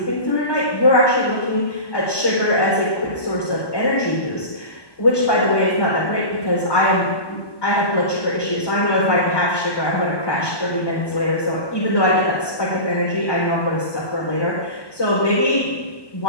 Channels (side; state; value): right; late; 1.2 ms